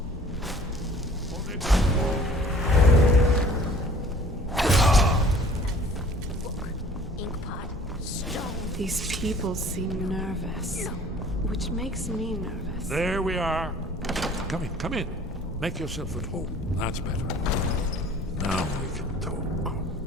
Hold it. Inkpot, stone. These people seem nervous, which makes me nervous. There we are. Come in. Make yourself at home. That's better. Now we can talk.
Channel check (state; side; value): normal; both; correlation 0.51